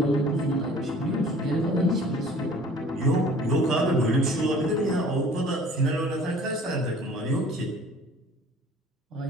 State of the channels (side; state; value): both; normal; correlation 0.50